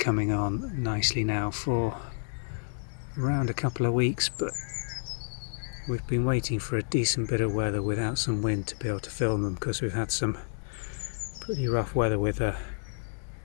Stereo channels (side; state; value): right; silent; digital silence